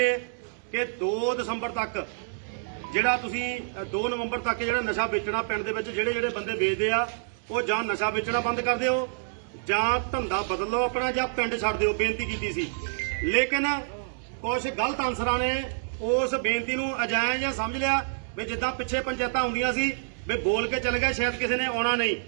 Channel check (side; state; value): left; silent; digital silence